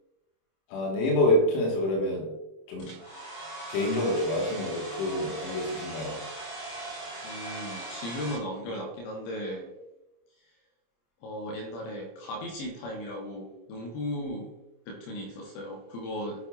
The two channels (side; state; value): right; late; 26 ms